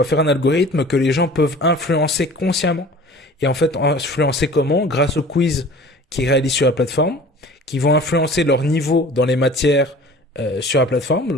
faire un algorithme que les gens peuvent influencer consciemment. Et en fait, influencer comment? Grâce aux quiz qu'ils réalisent sur la plateforme, qui vont influencer leur niveau dans les matières sur la plateforme.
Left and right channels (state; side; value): normal; both; correlation 0.44